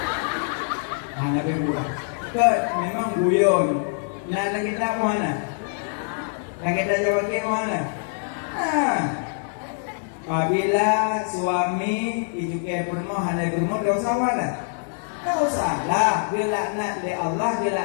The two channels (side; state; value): right; silent; digital silence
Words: Hanya berbuat. Kat memang guyon. Nak kita mana? Yang kita jawab ke mana? Apabila suami ijuke permohonan dari rumah, tak usah mana? Tak usah lah. Bila laknat oleh Allah, bila